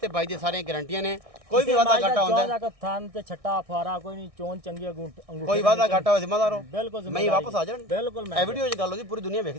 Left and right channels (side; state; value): left; late; 1.6 ms